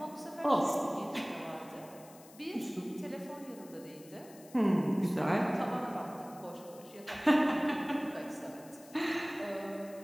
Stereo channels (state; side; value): noise; left; hiss, 22 dB below the sound